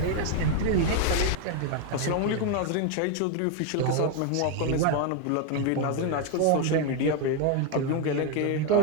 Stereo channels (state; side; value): different; both; correlation 0.01